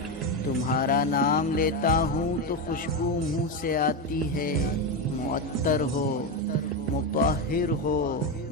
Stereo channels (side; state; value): both; normal; correlation 0.12